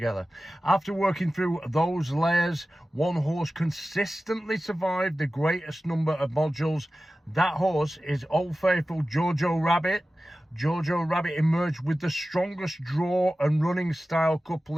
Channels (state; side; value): normal; both; correlation 0.95